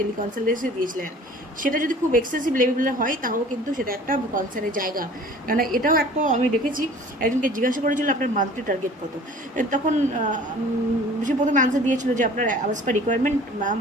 দিয়েছিলেন। সেটা যদি খুব এক্সেসিভ লেভেলের হয় তাহলে কিন্তু সেটা একটা কনসার্নের জায়গা, কারণ এটাও একটা আমি দেখেছি একজনকে জিজ্ঞাসা করেছিল আপনার মান্থলি টার্গেট কত, তখন সে প্রথমে আনসার দিয়েছিল যে আপনার অ্যাজ পার রিকোয়ারমেন্ট ম্যাম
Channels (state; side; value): normal; both; correlation 0.47